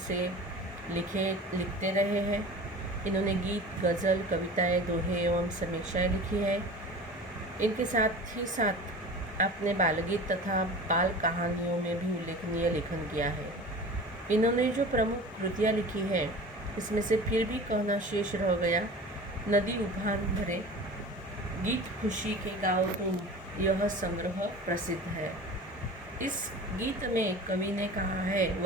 लिखते रहे हैं। इन्होंने गीत, गज़ल, कविताएं, दोहे एवं समीक्षाएं लिखी है। इनके साथ ही साथ अपने बालगीत तथा बाल कहानियों में भी उल्लेखनीय लेखन किया है। इन्होंने जो प्रमुख कृतियाँ लिखी हैं, इसमें से फिर भी कहना शेष रह गया, नदी उफान भरे, गीत खुशी के गाओ तुम, यह संग्रह प्रसिद्ध है। इस गीत में कवि ने कहा है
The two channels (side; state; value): both; normal; correlation 0.37